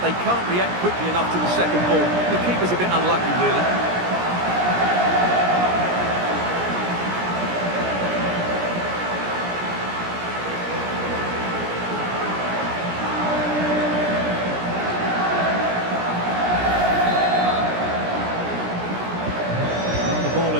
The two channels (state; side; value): late; left; 17 ms